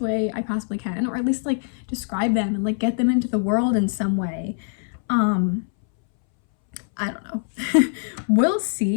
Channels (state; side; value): silent; right; 62 dB below the other